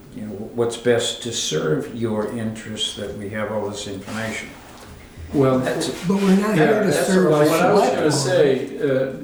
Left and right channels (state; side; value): identical; both; correlation 1.00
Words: what's best to serve your interests, that we have all this information. Well, That's, But we're not here to that's serve well, the what I was select gonna